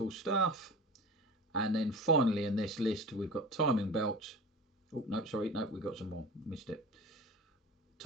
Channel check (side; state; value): both; normal; correlation 0.34